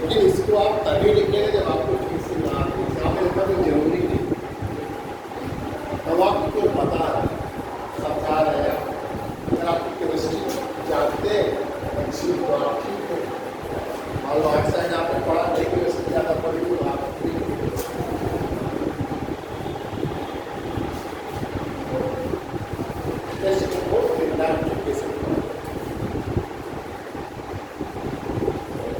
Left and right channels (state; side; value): identical; both; correlation 1.00